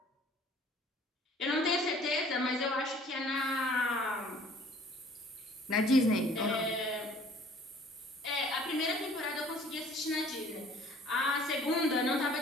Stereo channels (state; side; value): normal; both; correlation 0.53